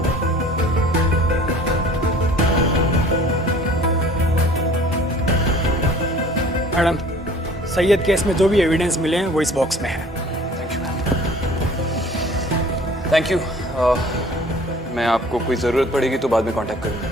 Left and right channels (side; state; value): both; normal; correlation 0.50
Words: मैडम, सैयद केस में जो भी एविडेंस मिले हैं वो इस बॉक्स में है। Thank you. मैं आपको कोई ज़रूरत पड़ेगी तो बाद में कांटेक्ट